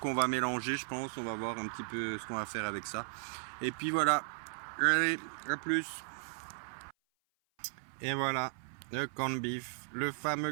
va mélanger, je pense. On va voir un petit peu ce qu'on va faire avec ça. Et puis voilà. Allez, à plus. Et voilà, le corned beef, le fameux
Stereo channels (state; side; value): silent; left; 54 dB below the other